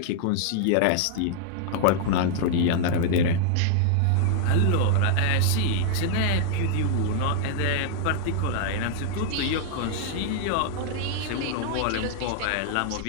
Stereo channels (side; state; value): both; different; correlation 0.00